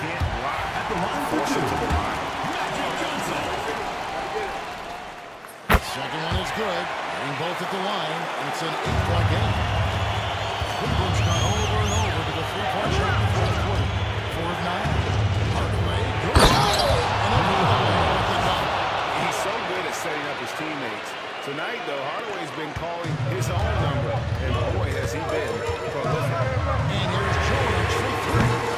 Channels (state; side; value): identical; both; correlation 1.00